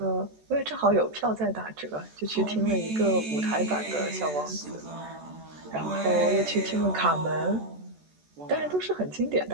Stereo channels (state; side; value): late; left; 14 ms